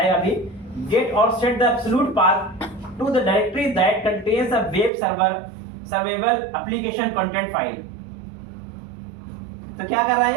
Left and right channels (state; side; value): drops out; left; at 4.9 s